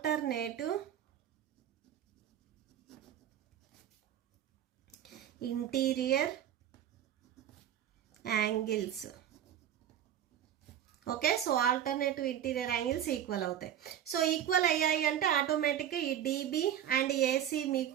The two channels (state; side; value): quieter; left; 10.4 dB